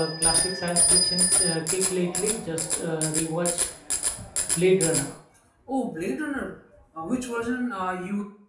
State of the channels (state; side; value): identical; both; correlation 1.00